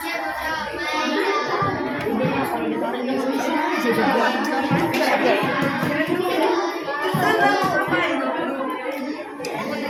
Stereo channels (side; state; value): both; identical; correlation 1.00